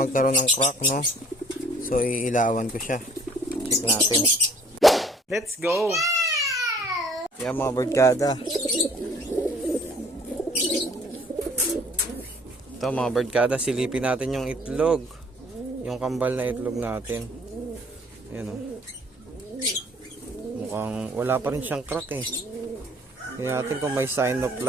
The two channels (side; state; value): both; normal; correlation 0.55